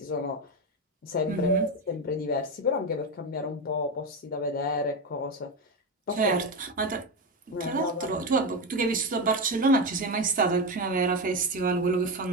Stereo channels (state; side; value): normal; both; correlation 0.13